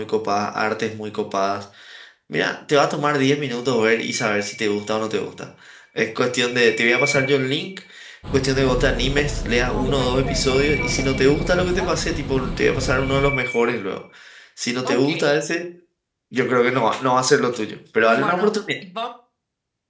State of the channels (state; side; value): identical; both; correlation 1.00